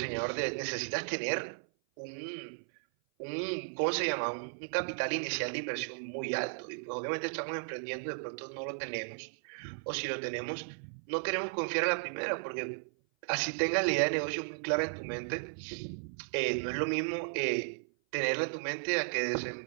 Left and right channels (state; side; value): silent; left; 54 dB below the other